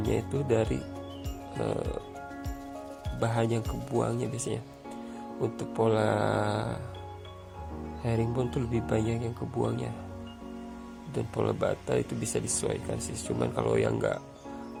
itu dari bahan yang kebuangnya biasanya. Untuk pola herringbone tuh lebih banyak yang kebuangnya, dan pola bata itu bisa disesuaikan sih. Cuman kalau yang nggak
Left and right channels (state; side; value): identical; both; correlation 1.00